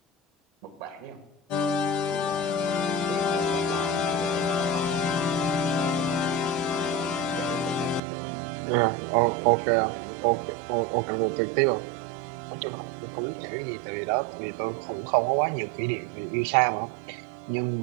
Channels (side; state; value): left; drops out; at 8.0 s